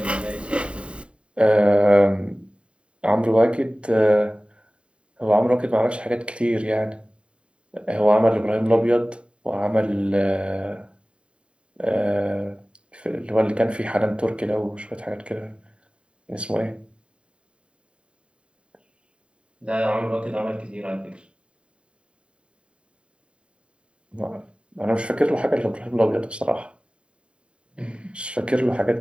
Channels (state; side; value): late; left; 0.055 ms